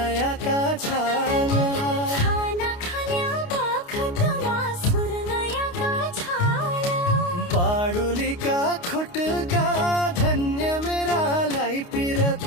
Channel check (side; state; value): right; late; 29 ms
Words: छाल खाना खान्या बखतमा सुर्नयाका छाल बाडुलीका खुटका धन्य मेरालाई